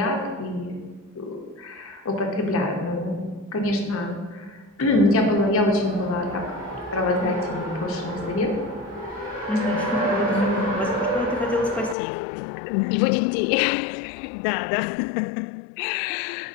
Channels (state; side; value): drops out; right; at 12.0 s